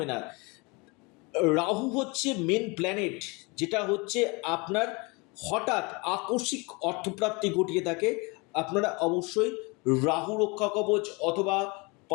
না। রাহু হচ্ছে মেন প্ল্যানেট, যেটা হচ্ছে আপনার হঠাৎ আকস্মিক অর্থপ্রাপ্তি ঘটিয়ে থাকে। আপনারা অবশ্যই রাহু রক্ষা কবচ অথবা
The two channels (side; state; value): right; quieter; 28.0 dB